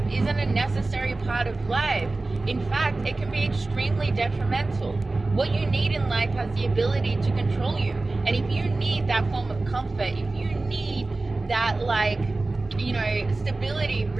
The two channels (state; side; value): quieter; left; 3.2 dB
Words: isn't a necessary part of life. In fact, it can be extremely detrimental. What you need in life has the ability to control you. And if you need that form of comfort, if you need that, stability,